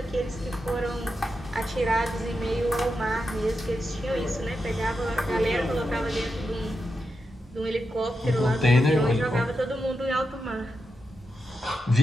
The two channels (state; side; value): normal; both; correlation 0.87